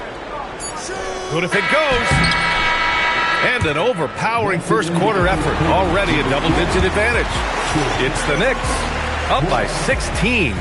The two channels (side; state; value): both; identical; correlation 1.00